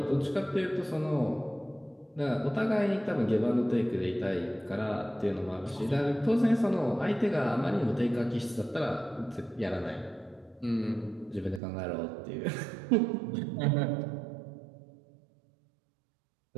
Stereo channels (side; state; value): left; drops out; at 11.6 s